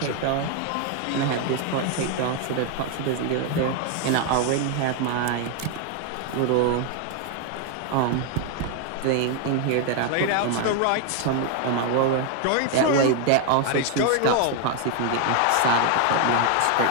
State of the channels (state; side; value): different; both; correlation 0.01